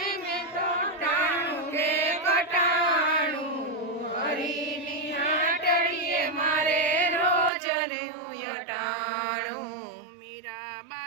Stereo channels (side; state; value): left; drops out; at 7.5 s